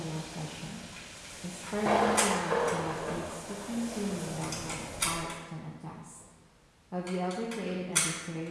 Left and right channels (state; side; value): identical; both; correlation 1.00